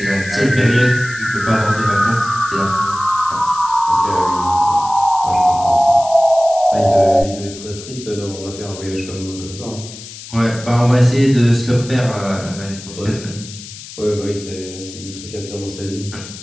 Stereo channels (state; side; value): noise; left; hiss, 14 dB below the sound